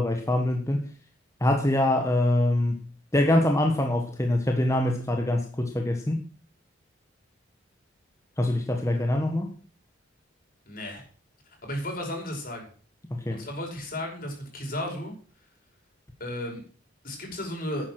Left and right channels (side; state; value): both; normal; correlation 0.78